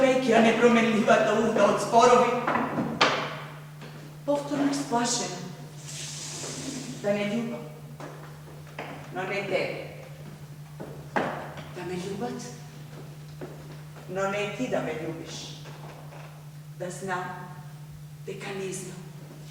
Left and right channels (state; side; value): identical; both; correlation 1.00